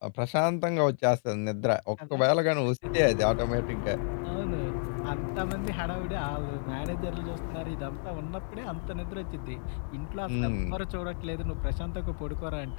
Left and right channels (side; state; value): right; silent; 57 dB below the other